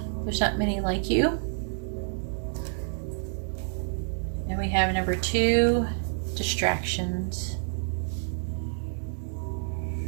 There's not many like you. And we have number 2, distractions.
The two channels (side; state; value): left; silent; 59 dB below the other